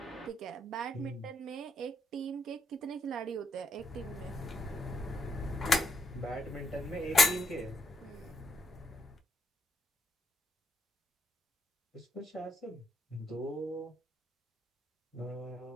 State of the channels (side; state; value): both; normal; correlation 0.77